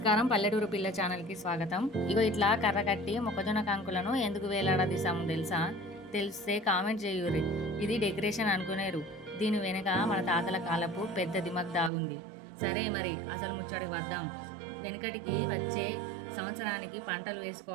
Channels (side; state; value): left; drops out; at 11.9 s